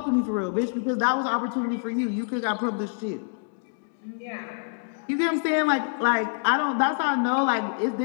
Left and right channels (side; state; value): right; silent; digital silence